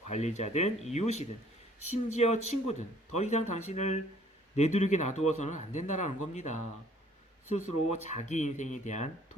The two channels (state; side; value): normal; both; correlation 0.58